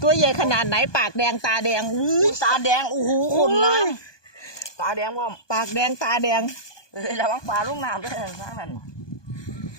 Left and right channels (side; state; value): right; late; 1.2 ms